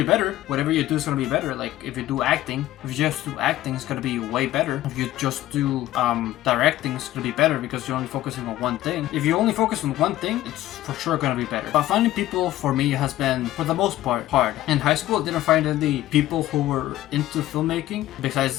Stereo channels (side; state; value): right; quieter; 14.8 dB